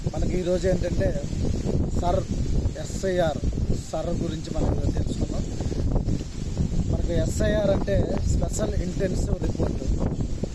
మనకి ఈరోజు ఏంటంటే ఎస్ఐఆర్ గురించి మనం తెలుసుకుందాం. మనకి ఎస్ఐఆర్ అంటే స్పెషల్ ఇంటెన్సివ్ రిపోర్ట్.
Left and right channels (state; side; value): identical; both; correlation 1.00